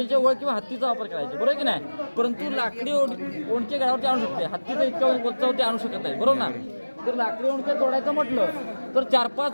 वळ किंवा हत्तीचा वापर करायचे, बरोबर की नाही? परंतु लाकडी ओंडके गडावरती आणू शकते, हत्तीचा इतक्या वरती आणू शकत नाही, बरोबर ना? जर लाकडी ओंडके तोडायचं म्हटलं तर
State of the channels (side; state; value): both; inverted; correlation -1.00